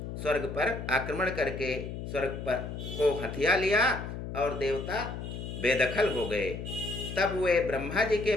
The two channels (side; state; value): left; noise; hum, 7 dB below the sound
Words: स्वर्ग पर आक्रमण करके स्वर्ग पर को हथिया लिया और देवता बेदखल हो गए। तब वे ब्रह्मा जी के